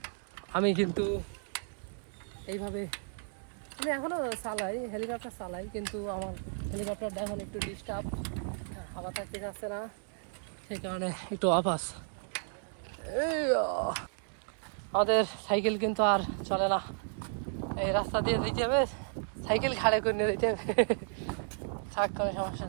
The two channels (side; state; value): left; silent; digital silence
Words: আমি কিন্তু এইভাবে আমি এখনো চালাই, হেলিকপ্টার চালাই, কিন্তু আমার হেলিকপ্টারটা এখন একটু ডিস্টার্ব, হাওয়া থাকতে যাচ্ছে না, সেই কারণে একটু অফ আছে। আমাদের সাইকেল কিন্তু আর চলে না, এই রাস্তা দিয়ে যেতে হবে সাইকেল খাড়ে করে নিয়ে যেতে থাক, কোনো সমস্যা